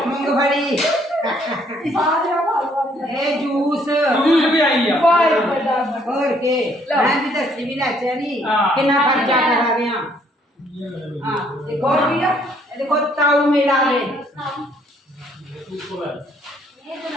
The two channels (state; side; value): normal; both; correlation 0.65